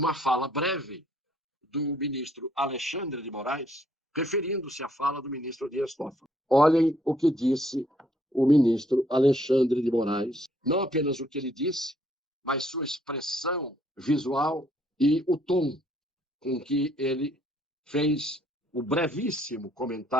fala breve do ministro Alexandre de Moraes, referindo-se à fala do ministro Dias Toffoli. Olhem o que disse o ministro Alexandre de Moraes, não apenas o que ele disse, mas sua expressão visual e o tom com que ele fez o brevíssimo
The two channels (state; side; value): normal; both; correlation 0.67